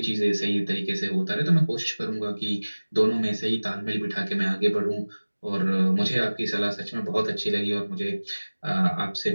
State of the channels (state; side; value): inverted; both; correlation -1.00